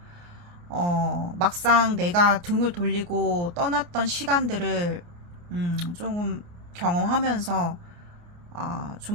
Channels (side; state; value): left; late; 29 ms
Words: 막상 내가 등을 돌리고 떠났던 시간들을, 조금 경험하면서,